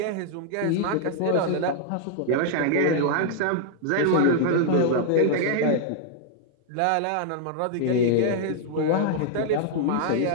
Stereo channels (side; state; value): both; different; correlation -0.01